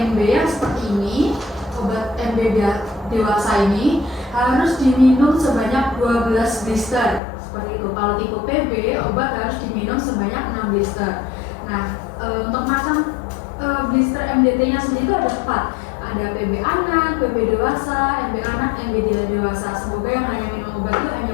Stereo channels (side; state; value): right; drops out; at 7.2 s